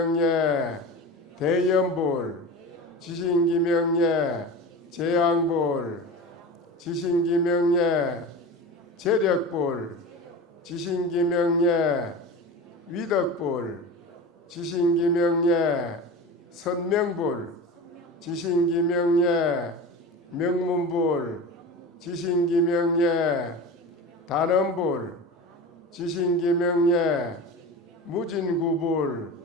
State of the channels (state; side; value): normal; both; correlation 0.30